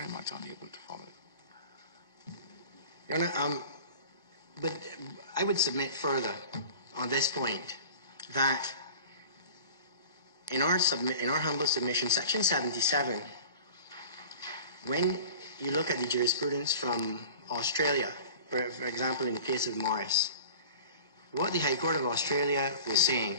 much unable to follow it. Your Honour, but I would submit further on this point that in our humble submission, Section 77, when you look at the jurisprudence from Australia, for example, in the case of Morris, what the High Court of Australia was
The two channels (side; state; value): both; inverted; correlation -0.40